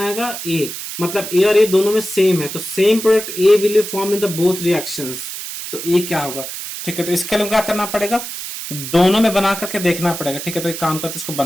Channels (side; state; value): right; noise; hiss, 8 dB below the sound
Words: A, मतलब A और A दोनों में सेम है, तो same product A will form in the both reactions. तो A क्या होगा, ठीक है। तो इसके लिए क्या करना पड़ेगा, दोनों में बना करके देखना पड़ेगा, ठीक है। तो एक काम करते हैं, इसको